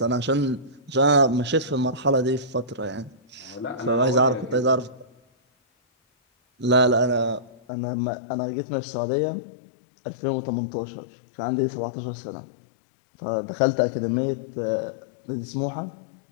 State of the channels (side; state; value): right; drops out; at 7.6 s